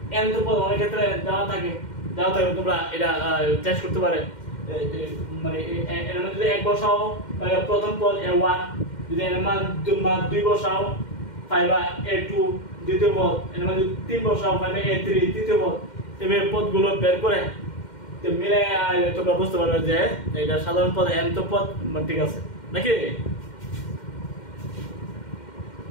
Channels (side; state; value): right; late; 2.1 ms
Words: nth পদ অনেক ক্ষেত্রে দেওয়া থাকে তোমরা এটা টেস্ট করতে পারে। মানে এর মান যদি 1 বসাও তাহলে প্রথম পদ a1, যদি এর মান 2 বসাও পাইবা a2 দ্বিতীয় পদ, এর মান যদি 3 বসাও পাইবা a3 তৃতীয় পদ। এভাবে পদগুলো বের করে তো মিলে তোমরা বুঝতে পারবে যে এটা সাধারণ পদ nth পদ ঠিক আছে নাকি।